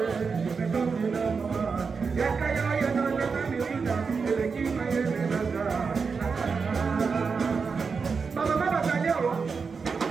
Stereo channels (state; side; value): quieter; left; 5.2 dB